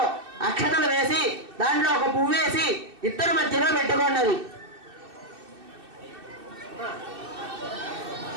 అక్షతలు వేసి దాంట్లో ఒక పువ్వు వేసి ఇద్దరు మధ్యలో పెట్టుకున్నది.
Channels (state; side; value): late; left; 2.6 ms